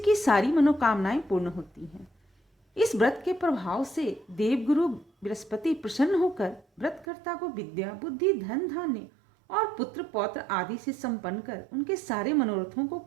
सारी मनोकामनाएं पूर्ण होती हैं। इस व्रत के प्रभाव से देवगुरु बृहस्पति प्रसन्न होकर व्रतकर्ता को विद्या, बुद्धि, धन, धान्य और पुत्र पौत्र आदि से संपन्न कर उनके सारे मनोरथों को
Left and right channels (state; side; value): drops out; left; at 7.1 s